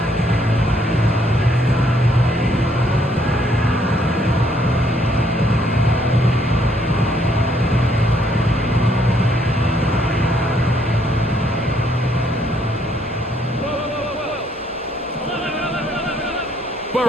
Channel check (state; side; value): normal; both; correlation 0.69